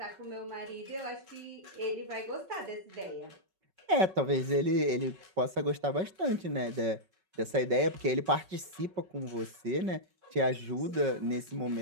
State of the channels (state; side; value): late; left; 5.3 ms